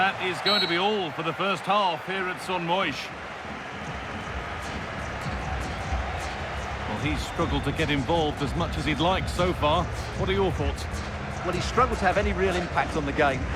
is going to be all for the first half here at Son Moix. Well, he's struggled to get involved as much as he'd like so far. What are your thoughts? Well, he's struggled to have any real impact on the game.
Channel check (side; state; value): both; identical; correlation 1.00